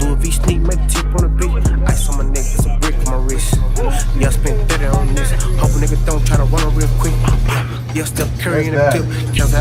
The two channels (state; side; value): identical; both; correlation 1.00